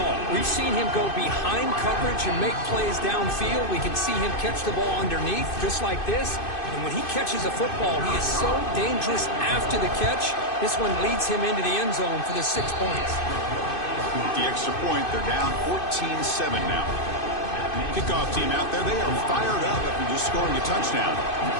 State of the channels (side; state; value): right; late; 2.5 ms